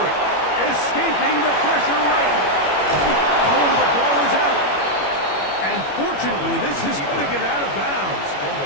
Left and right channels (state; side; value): late; right; 21 ms